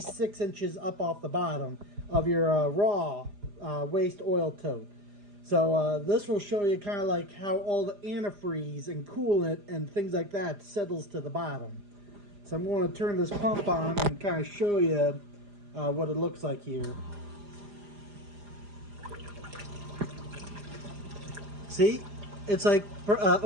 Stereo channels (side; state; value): left; late; 4.9 ms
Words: 6 inches up off the bottom of your raw waste oil tote. So this will show you kind of like how all the antifreeze and coolant and things like that settles to the bottom. So I'm going to turn this pump on and kind of show you what it looks like here. See? It's like